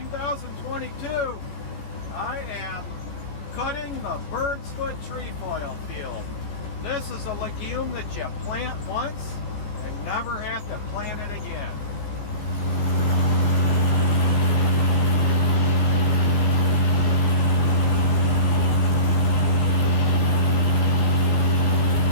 I am cutting the Birdsfoot Trefoil field. This is a legume that you plant once and never have to plant it again.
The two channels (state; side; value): late; right; 14 ms